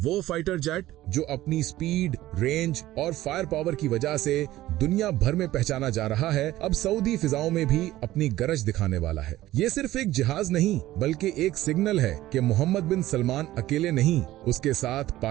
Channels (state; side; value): quieter; left; 15.5 dB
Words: फाइटर जेट जो अपनी स्पीड, रेंज और फायर पावर की वजह से दुनिया भर में पहचाना जा रहा है, अब सऊदी फिजाओं में भी अपनी गरज दिखाने वाला है। ये सिर्फ एक जहाज नहीं बल्कि एक सिग्नल है कि मोहम्मद बिन सलमान अकेले नहीं, उसके साथ